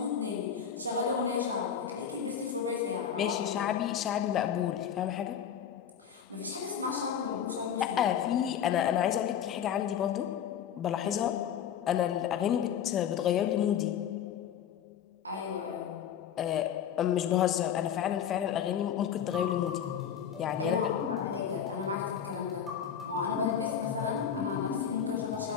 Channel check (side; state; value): right; quieter; 8.6 dB